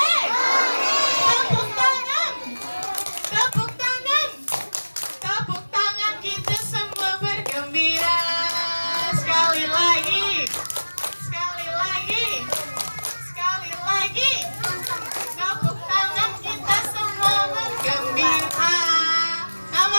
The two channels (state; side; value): inverted; both; correlation -1.00